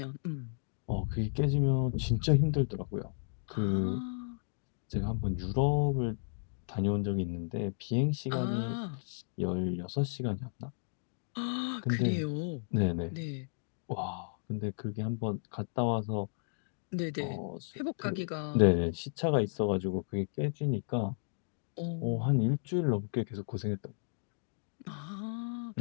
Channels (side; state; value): right; silent; digital silence